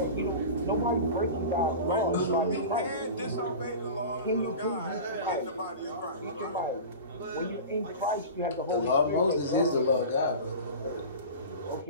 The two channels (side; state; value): both; inverted; correlation -0.32